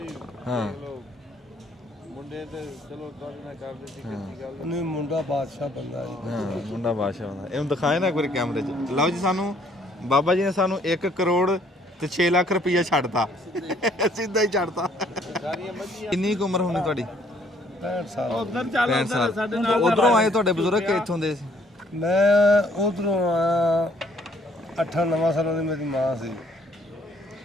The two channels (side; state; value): both; normal; correlation 0.64